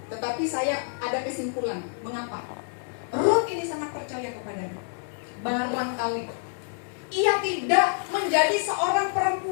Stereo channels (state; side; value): silent; right; digital silence